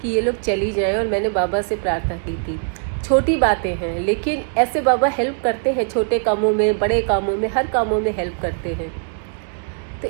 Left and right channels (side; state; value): left; silent; 65 dB below the other